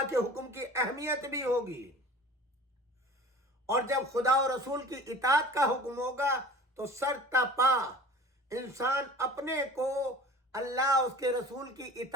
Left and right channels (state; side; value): normal; both; correlation 0.43